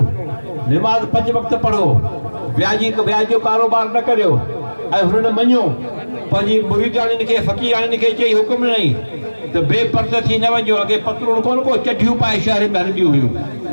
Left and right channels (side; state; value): both; inverted; correlation -1.00